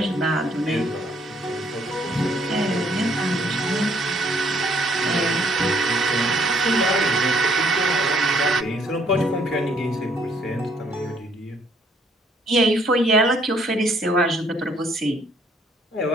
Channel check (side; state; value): both; normal; correlation 0.64